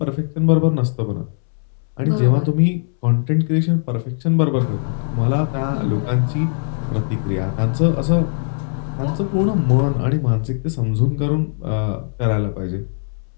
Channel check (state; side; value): silent; right; 66 dB below the other